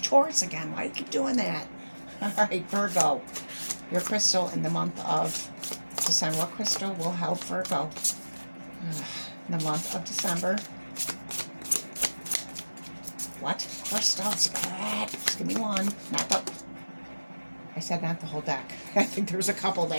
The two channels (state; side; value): inverted; both; correlation -1.00